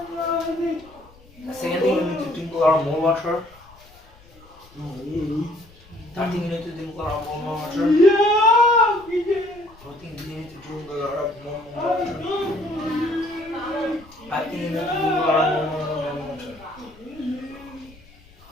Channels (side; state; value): left; noise; rumble, 26 dB below the sound